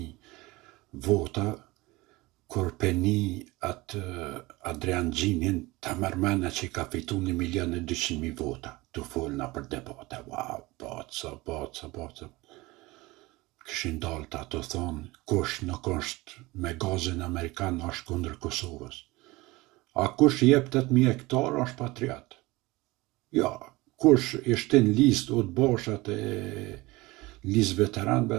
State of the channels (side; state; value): left; quieter; 21.3 dB